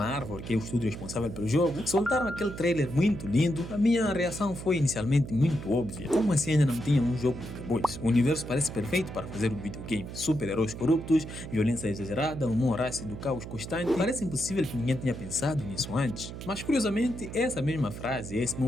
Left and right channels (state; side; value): noise; right; hum, 10 dB below the sound